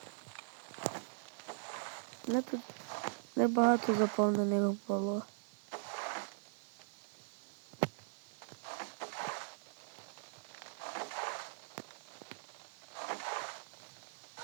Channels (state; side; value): silent; left; 51 dB below the other